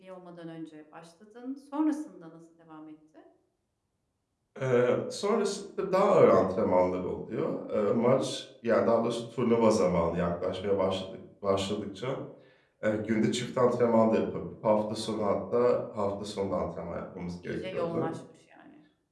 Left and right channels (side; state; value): both; identical; correlation 1.00